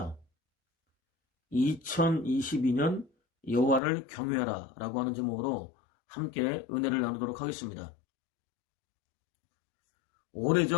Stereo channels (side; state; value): right; drops out; at 3.8 s